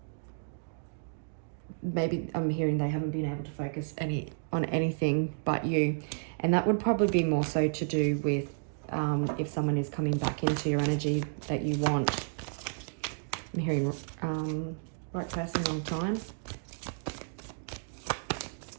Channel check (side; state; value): left; silent; digital silence